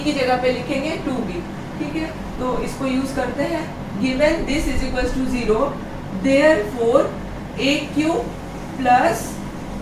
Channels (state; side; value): identical; both; correlation 1.00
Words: की जगह पे लिखेंगे 2b। ठीक है, तो इसको यूज करते हैं। Given this is equals to 0 therefore a cube plus